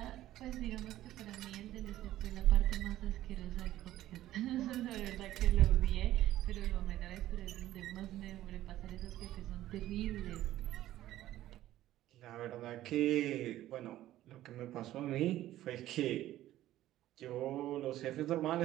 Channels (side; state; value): left; quieter; 14.1 dB